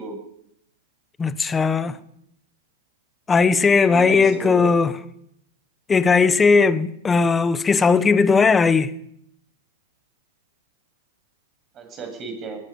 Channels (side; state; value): right; quieter; 4.4 dB